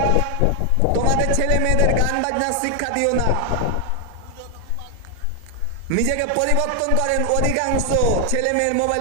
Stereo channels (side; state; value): both; different; correlation 0.00